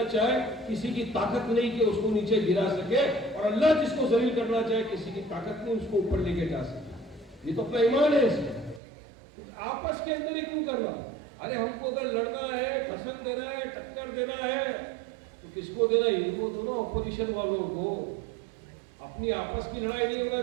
चाहे किसी की ताकत नहीं कि उसको नीचे गिरा सके, और अल्लाह जिसको जलील करना चाहे किसी की ताकत नहीं उसको ऊपर लेके जा सके। ये तो अपना ईमान है इसमें। आपस के अंदर ही क्यों करना? अरे हमको अगर लड़ना है, भाषण देना है, टक्कर देना है तो किसको देना? इनको दोनों अपोजिशन वालों को। अपनी आपस की लड़ाई नहीं होना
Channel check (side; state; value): left; drops out; at 8.8 s